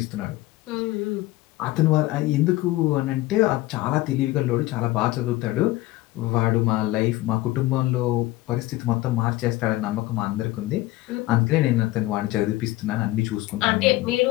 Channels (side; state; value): right; quieter; 17.8 dB